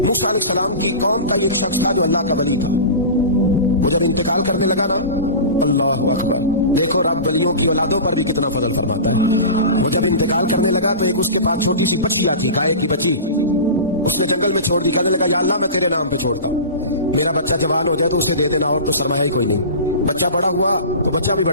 موسیٰ علیہ السلام کی قوم کا ایک شخص تھا جو اللہ کا ولی تھا۔ وہ جب انتقال کرنے لگا نا، اللہ اکبر، دیکھو رب ولیوں کی اولادوں پر بھی کتنا فضل فرماتا ہے۔ وہ جب انتقال کرنے لگا تو ایک اس کے پاس چھوٹی سی بچیا تھی، گائے کی بچی، اس نے جنگل میں چھوڑ دی۔ کہنے لگا یا اللہ میں تیرے نام پہ چھوڑتا ہوں، میرا بچہ جوان ہو جائے تو اسے دے دینا، اور تو سرمایہ ہی کوئی نہیں۔ بچہ بڑا ہوا تو بچہ بھی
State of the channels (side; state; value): both; inverted; correlation -0.31